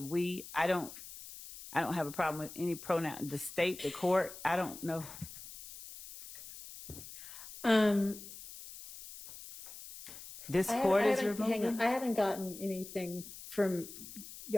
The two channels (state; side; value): noise; left; hiss, 14 dB below the sound